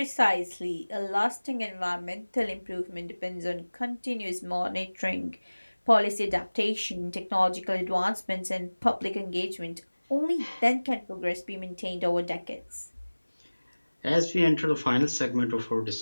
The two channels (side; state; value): both; inverted; correlation -1.00